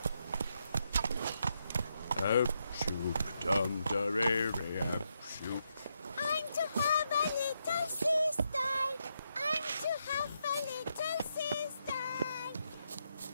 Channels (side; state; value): both; inverted; correlation -0.81